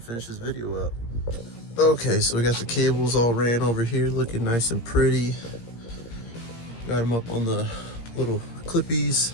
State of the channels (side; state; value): right; late; 17 ms